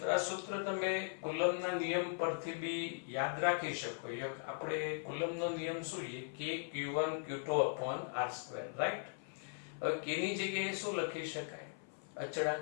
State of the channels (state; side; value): silent; right; 52 dB below the other